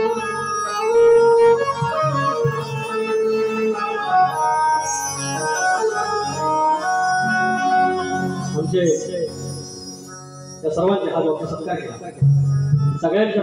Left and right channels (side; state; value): both; identical; correlation 1.00